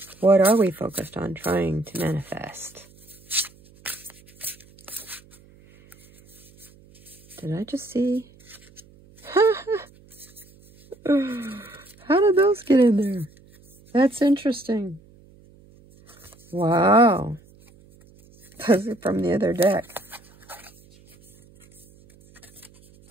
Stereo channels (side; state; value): right; noise; hum, 27 dB below the sound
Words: What are we focused on trying to manifest? Did I just see? How did those get in there? That's interesting. Wow. Those are from the other deck.